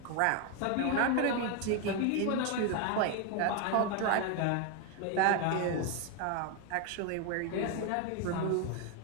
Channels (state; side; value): different; both; correlation 0.01